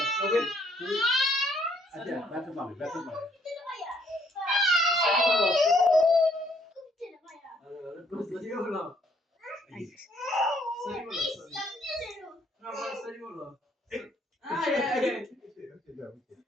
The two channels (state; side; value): normal; both; correlation 0.66